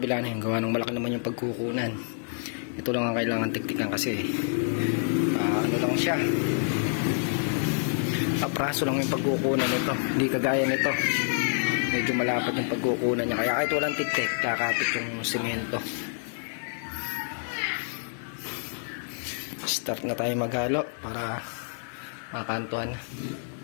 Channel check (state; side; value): silent; right; 58 dB below the other